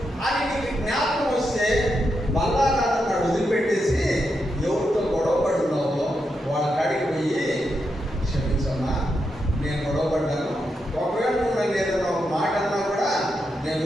అని నీకు జ్ఞాపకం వస్తే బల్లారాధన వదిలిపెట్టేసి ఎవరితో గొడవ పడుతున్నావో వాళ్ళ కాడికి పోయి, క్షమించమ్మా నేను గొడవ పడ్డాను, ఒకవేళ నువ్వు నన్ను ఏదైనా ఒక మాట అన్నా కూడా నేను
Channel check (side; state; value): both; normal; correlation 0.84